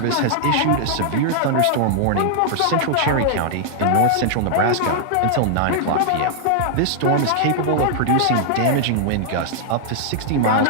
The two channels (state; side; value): different; both; correlation -0.01